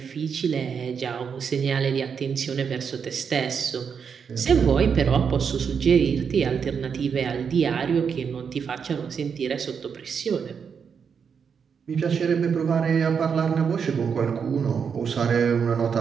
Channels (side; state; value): left; quieter; 6.6 dB